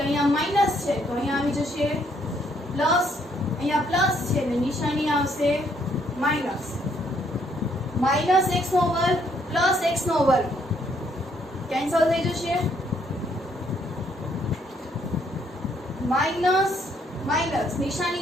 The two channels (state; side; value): normal; both; correlation 0.69